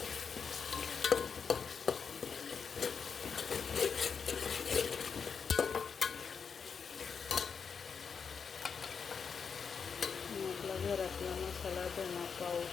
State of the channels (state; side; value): quieter; right; 6.1 dB